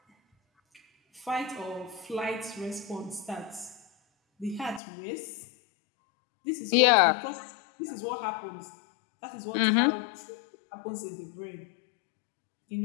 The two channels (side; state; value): right; drops out; at 4.8 s